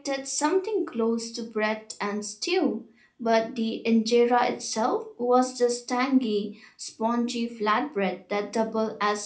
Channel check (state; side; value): identical; both; correlation 1.00